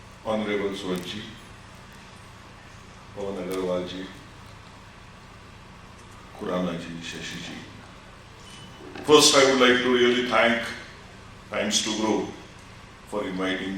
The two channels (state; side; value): identical; both; correlation 1.00